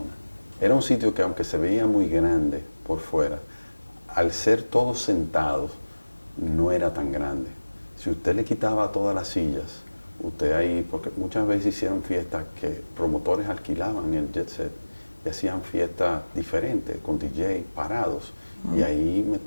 Era un sitio que, aunque se veía muy grande por fuera, al ser todos sentados, no era tan grande. Si usted le quitaba todas las sillas, usted ahí, porque muchas veces hicieron fiestas que promotores alquilaban el Jet Set y hacían fiestas diferentes, con DJ parados, y ahí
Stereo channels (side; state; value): both; inverted; correlation -1.00